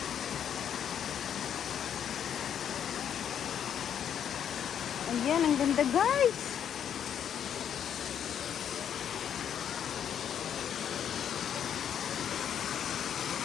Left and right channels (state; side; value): quieter; right; 8.9 dB